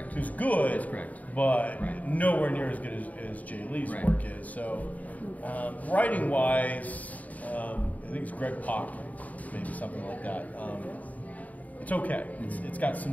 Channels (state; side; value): late; right; 0.073 ms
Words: Who's good, that's correct. But nowhere near as good as Jay Lee's work is. So, writing-wise, I think it's Greg Pak, maybe something like that. It's okay. It's got some